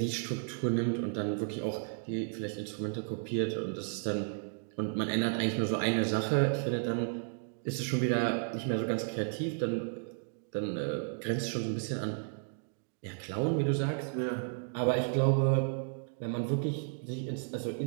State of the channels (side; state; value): left; silent; digital silence